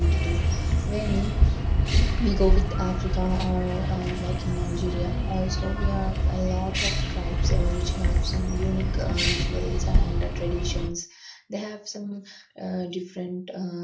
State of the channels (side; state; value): both; identical; correlation 1.00